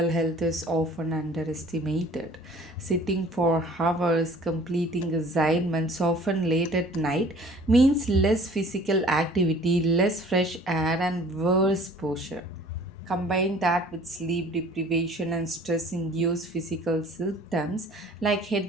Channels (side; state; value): both; normal; correlation 0.50